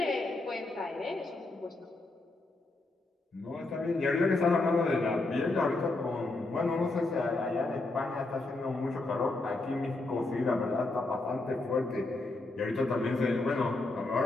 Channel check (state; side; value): quieter; right; 3.1 dB